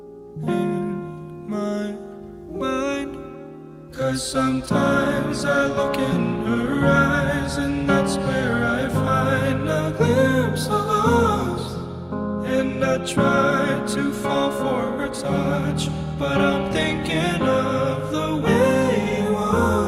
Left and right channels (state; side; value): identical; both; correlation 1.00